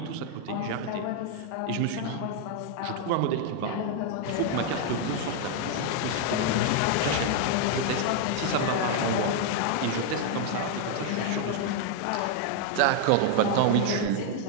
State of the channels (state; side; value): different; both; correlation 0.00